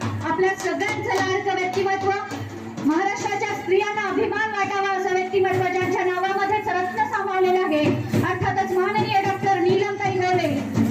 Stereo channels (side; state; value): both; identical; correlation 1.00